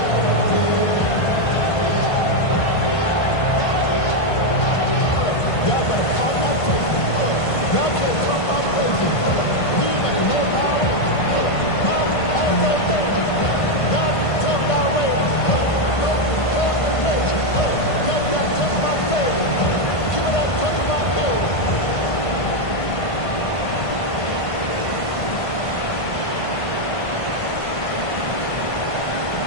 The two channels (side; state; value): right; late; 1.5 ms